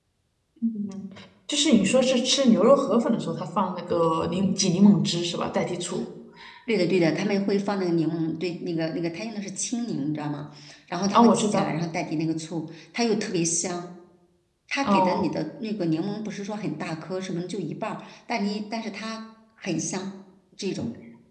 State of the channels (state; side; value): identical; both; correlation 1.00